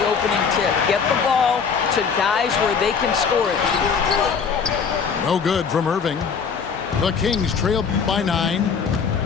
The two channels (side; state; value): right; quieter; 6.1 dB